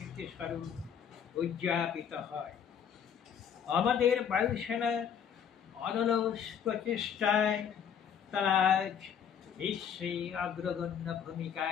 স্বরূপ উদযাপিত হয়। আমাদের বায়ুসেনা অনলস প্রচেষ্টায় তারা আজ বিশ্বে অগ্রগণ্য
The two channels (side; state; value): right; quieter; 8.0 dB